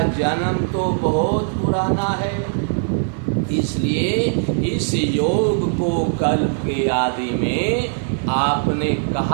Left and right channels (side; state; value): left; silent; digital silence